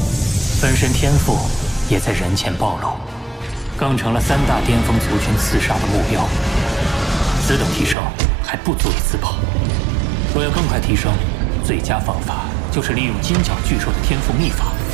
分身天赋也在人前暴露，更成了3大巅峰族群刺杀的目标。此等提升还不足以自保。若要更快提升，最佳方法就是利用金角巨兽的天赋秘法，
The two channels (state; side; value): drops out; left; at 8.0 s